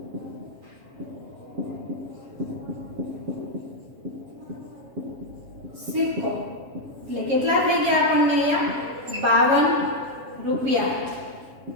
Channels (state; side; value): late; left; 7.3 ms